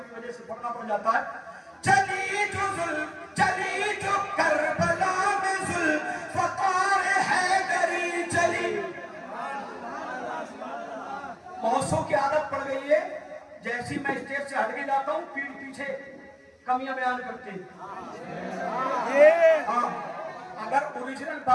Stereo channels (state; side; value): identical; both; correlation 1.00